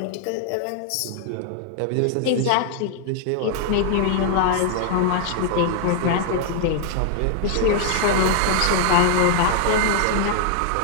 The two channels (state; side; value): different; both; correlation 0.00